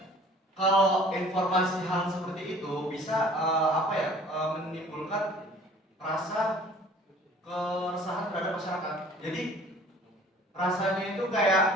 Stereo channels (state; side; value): normal; both; correlation 0.50